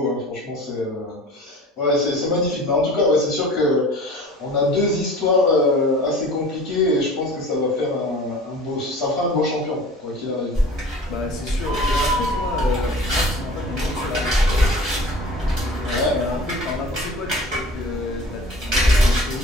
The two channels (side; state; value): both; normal; correlation 0.42